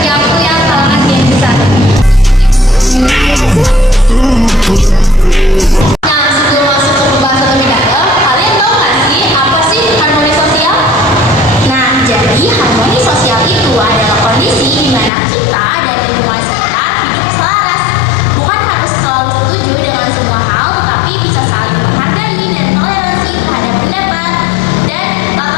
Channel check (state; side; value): drops out; right; at 15.1 s